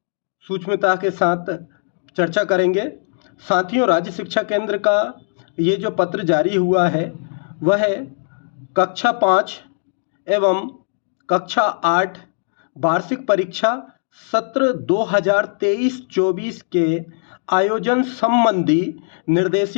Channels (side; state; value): right; silent; digital silence